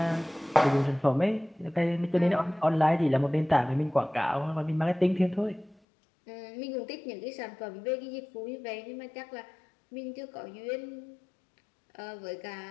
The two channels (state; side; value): drops out; right; at 5.8 s